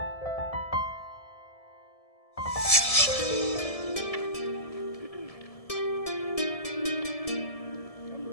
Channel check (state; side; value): late; right; 1.7 ms